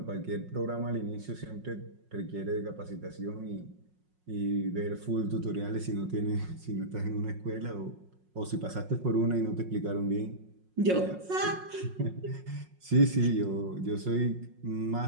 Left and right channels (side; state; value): left; late; 5.5 ms